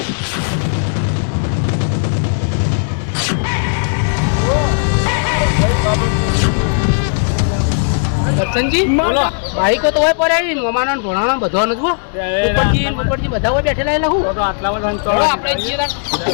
દર્શનજી બોલો બાઈકો તો હોય પડે મમાનો ભણાનો બધો નથી ઉપરથી બધા હોય બેઠેલા એટલે હું તો આટલામાં તો આપણે જઈએ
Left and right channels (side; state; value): right; silent; 61 dB below the other